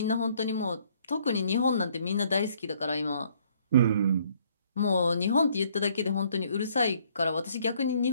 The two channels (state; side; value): inverted; both; correlation -0.64